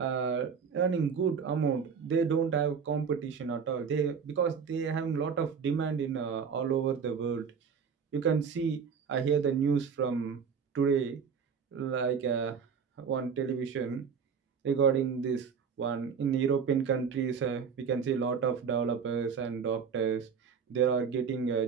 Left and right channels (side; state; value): left; quieter; 6.4 dB